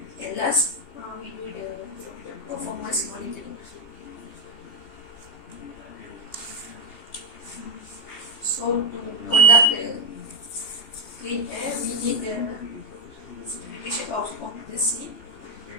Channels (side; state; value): right; late; 3.2 ms